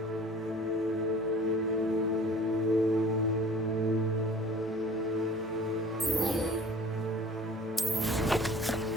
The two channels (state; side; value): normal; both; correlation 0.46